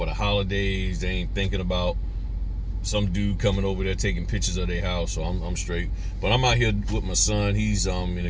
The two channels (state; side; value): identical; both; correlation 1.00